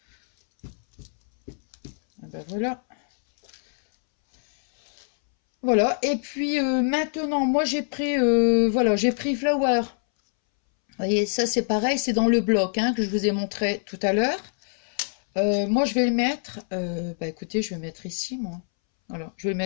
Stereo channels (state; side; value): silent; right; 62 dB below the other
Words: Et ben voilà. Voilà. Et puis maintenant, moi j'ai pris voilà, j'ai pris Flower. Vous voyez, ça c'est pareil, c'est dans le bloc hein, que je vous ai montré tout à l'heure. Moi je vais le mettre. Bah écoutez, je vais mettre ici, moi. Voilà, je vais le